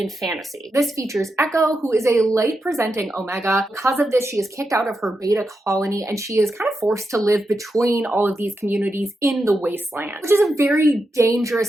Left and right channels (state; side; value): normal; both; correlation 0.87